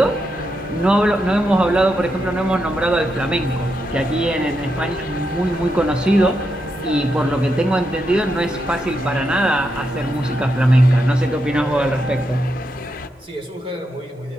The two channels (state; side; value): normal; both; correlation 0.84